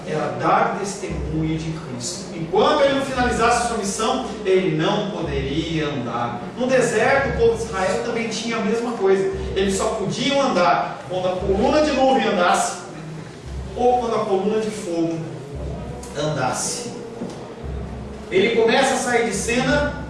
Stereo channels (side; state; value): both; identical; correlation 1.00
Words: era dar testemunho de Cristo. Enquanto ele não finalizasse a sua missão, ele não poderia andar. No deserto, o povo de Israel também tinha a mesma coisa. Eles só podiam andar quando a coluna de nuvem andasse, ou quando a coluna de fogo andasse. Ele começa a sair de cena